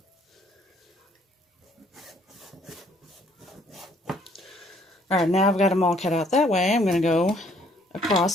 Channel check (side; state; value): both; normal; correlation 0.63